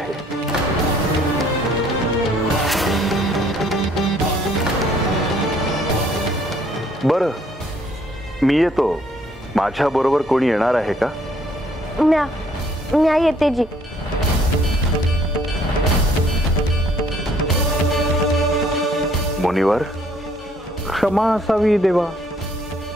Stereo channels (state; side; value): normal; both; correlation 0.63